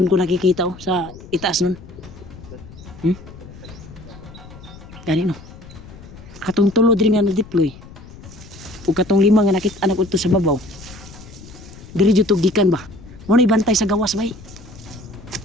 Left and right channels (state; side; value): noise; left; rumble, 18 dB below the sound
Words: ko nakikita oh, sa itaas nun. Gani no. Katong tulo din nga na-deploy. Ug katong lima nga nakita anak udto sa babaw. Diri jud gikan ba? Mo na ibantay sa gawas bay.